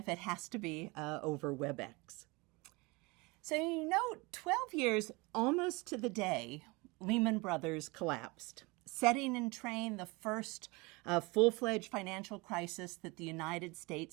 it has to be over WebEx. So 12 years almost to the day, Lehman Brothers collapsed, setting in train the first full-fledged financial crisis that the United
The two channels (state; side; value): quieter; left; 25.6 dB